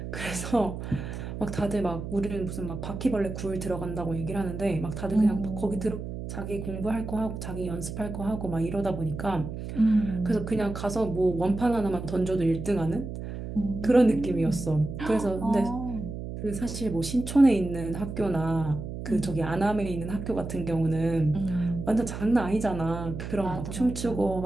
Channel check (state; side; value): noise; right; hum, 7 dB below the sound